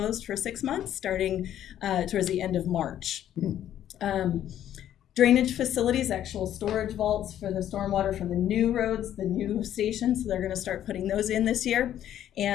for 6 months, starting towards the end of March. Drainage facilities, actual storage vaults for the stormwater from the new roads, the new stations. So they're going to start putting those in this year.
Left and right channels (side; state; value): right; quieter; 11.2 dB